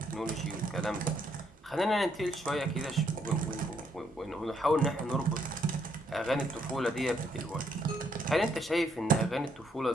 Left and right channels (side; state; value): both; normal; correlation 0.72